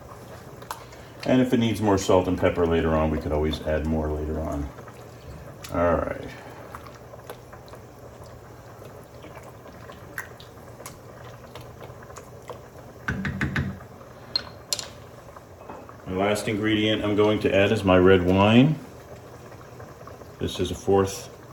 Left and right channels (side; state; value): both; identical; correlation 1.00